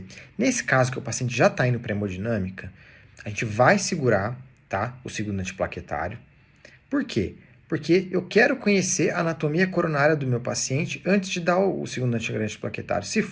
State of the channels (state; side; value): identical; both; correlation 1.00